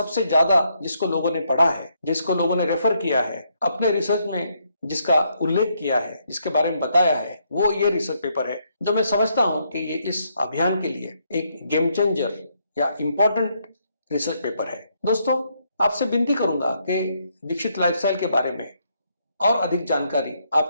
ज्यादा जिसको लोगों ने पढ़ा है, जिसको लोगों ने रेफर किया है, अपने रिसर्च में जिसका उल्लेख किया है, जिसके बारे में बताया है, वो ये रिसर्च पेपर है जो मैं समझता हूं कि ये इस अभियान के लिए एक गेम चेंजर या इंपॉर्टेंट रिसर्च पेपर है। दोस्तों, आपसे विनती करूंगा कि दीक्षित लाइफस्टाइल के बारे में और अधिक जानकारी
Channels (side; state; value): both; inverted; correlation -0.75